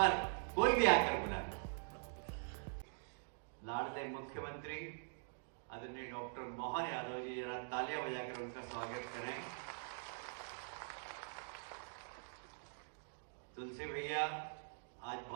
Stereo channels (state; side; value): silent; left; digital silence